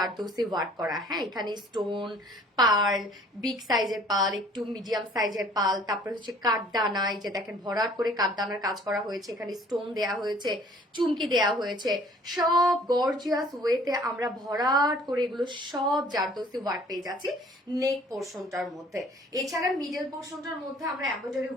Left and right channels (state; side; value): normal; both; correlation 0.54